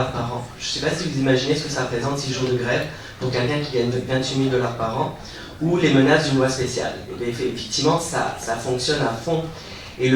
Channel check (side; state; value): both; identical; correlation 1.00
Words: par an. Je ne sais pas si vous imaginez ce que ça représente 6 jours de grève pour quelqu'un qui gagne 28 000 $ par an, ou les menaces d'une loi spéciale. Et effectivement, ça fonctionne à fond. Et